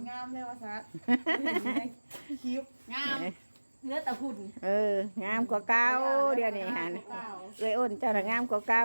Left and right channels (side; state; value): both; inverted; correlation -1.00